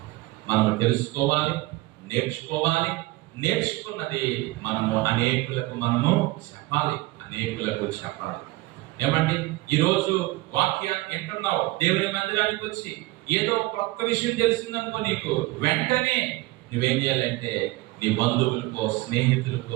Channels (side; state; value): left; quieter; 20.2 dB